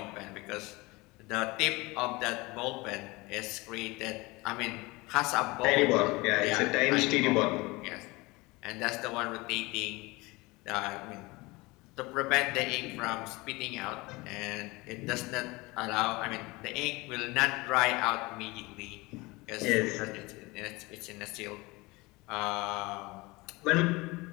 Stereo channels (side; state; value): right; quieter; 23.3 dB